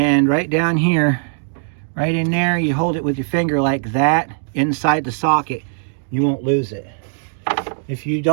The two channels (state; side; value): silent; left; 63 dB below the other